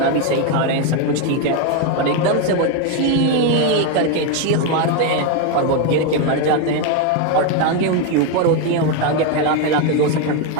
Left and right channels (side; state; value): both; different; correlation 0.02